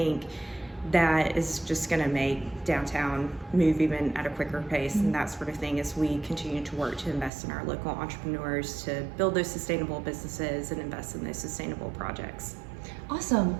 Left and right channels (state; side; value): drops out; left; at 7.3 s